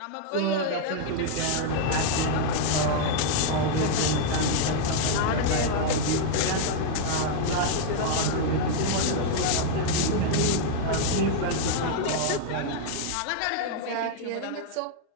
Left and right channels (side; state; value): both; different; correlation -0.01